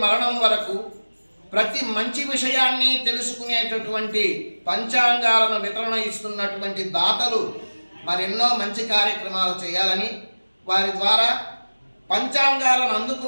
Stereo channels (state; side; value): inverted; both; correlation -1.00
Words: మరణం వరకు ప్రతి మంచి విషయాన్ని తెలుసుకునేటటువంటి పంచాంగాలను వితరణ ఇస్తున్నటువంటి దాతలు మరెన్నో మంచి కార్యక్రమాలు చేయాలని, వారి ద్వారా పంచాంగాలను